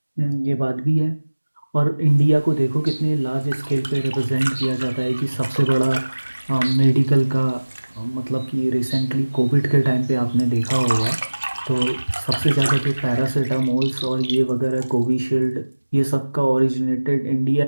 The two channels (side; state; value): both; inverted; correlation -1.00